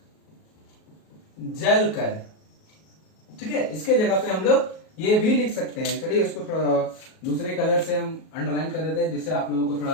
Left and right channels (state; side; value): late; right; 37 ms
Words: जलकर, ठीक है, इसके जगह पे हम लोग ये भी लिख सकते हैं। चलिए इसको थोड़ा दूसरे कलर से हम अंडरलाइन कर देते हैं जिससे आप लोगों को